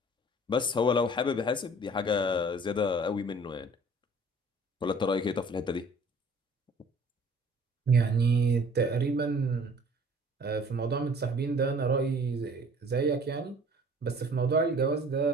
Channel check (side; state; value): both; normal; correlation 0.51